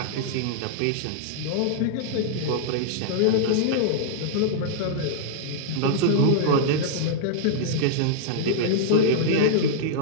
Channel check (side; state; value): both; different; correlation -0.01